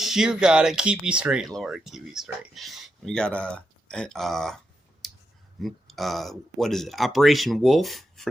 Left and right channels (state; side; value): normal; both; correlation 0.85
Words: You got it. Keep me straight, Lord. Keep me straight. We got what is it? Operation Wolf